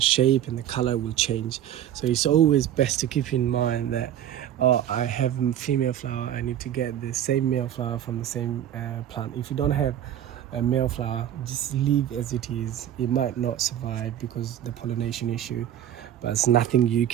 shape and the color will change. So it's always best to keep in mind that, oh, I have female flower, I need to get the same male flower from the same plant. If you don't have a male flower, just leave as it is. It might not survive because the pollination issue, but it's nothing you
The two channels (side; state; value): left; quieter; 11.0 dB